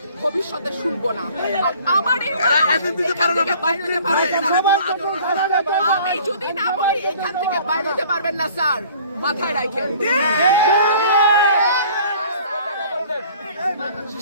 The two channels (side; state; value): both; inverted; correlation -0.51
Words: ভবিষ্যতে শুনবো না। আর আমার এই আমি যদি না বলি এখান থেকে বাইরে যেতে পারবেন না স্যার, মাথায় রাখেন।